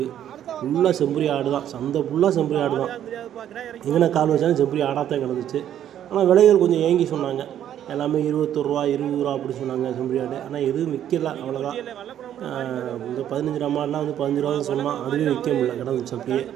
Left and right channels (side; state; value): left; quieter; 10.7 dB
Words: ஃபுல்லாக செம்பரி ஆடு தான். சந்தை ஃபுல்லாக செம்பரி ஆடு தான். எங்கே கால் வச்சாலும் செம்பரி ஆடாக தான் கிடந்துச்சு. ஆனால் விலைகள் கொஞ்சம் ஏங்கி சொன்னாங்க. எல்லாமே 21 ரூபா 20 ரூபா அப்படி சொன்னாங்க செம்பரி ஆடு. ஆனால் எதுவும் விற்கல, அவ்வளோதான். இந்த 15 ரூபா மாடெலாம் வந்து 15 ரூபா தான் சொன்னால், அதுவே விற்க முடியல, கிடந்துச்சு அப்படியே.